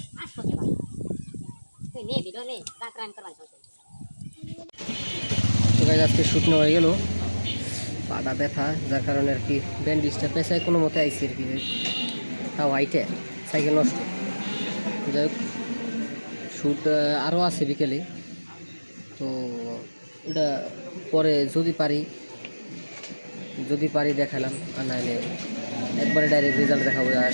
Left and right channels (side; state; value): both; inverted; correlation -1.00